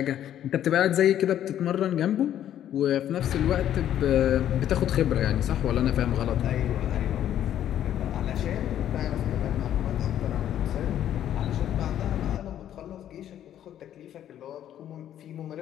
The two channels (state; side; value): quieter; right; 11.0 dB